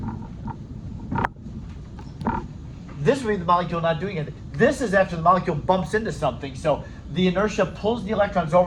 This would be the molecule not doing anything. This is after the molecule bumps into something. So the inertia pulls the electrons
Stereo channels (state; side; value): identical; both; correlation 1.00